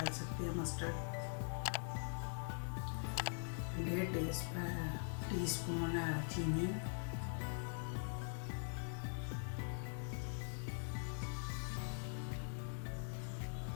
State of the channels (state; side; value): silent; right; digital silence